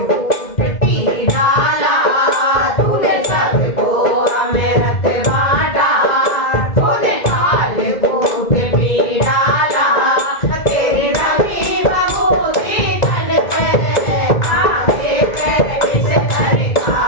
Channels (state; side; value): late; right; 2.1 ms